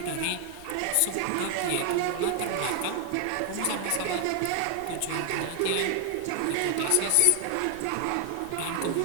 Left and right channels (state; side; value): different; both; correlation 0.00